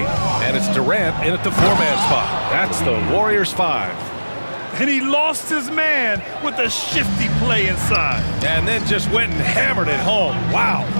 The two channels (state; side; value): inverted; both; correlation -1.00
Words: And it's Durant in at the 4-man spot. That's the Warriors 5. And he lost his man with a shifty play inside. And then just went and hammered it home. Wow.